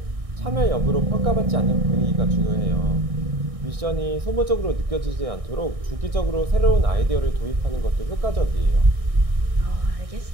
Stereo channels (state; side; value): late; left; 1.6 ms